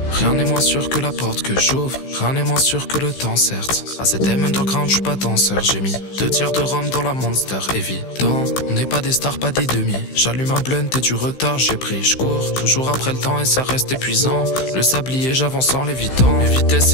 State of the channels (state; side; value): late; right; 16 ms